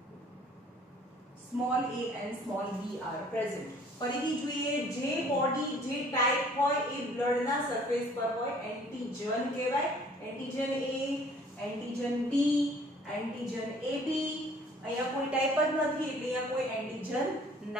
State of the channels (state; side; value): normal; both; correlation 0.55